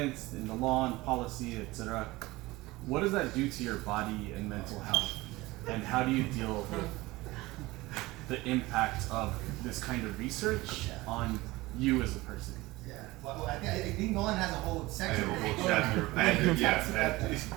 in the law and policy, etc. What does that do to your body and mental health? And how do you deal with the impact of this kind of research on you as a person? Yeah. Well, I think Nolan has a whole I section. have a whole chapter.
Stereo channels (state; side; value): quieter; left; 20.1 dB